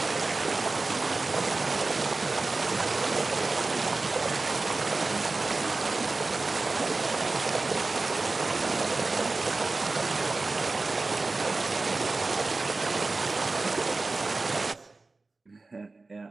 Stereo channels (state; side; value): quieter; left; 3.5 dB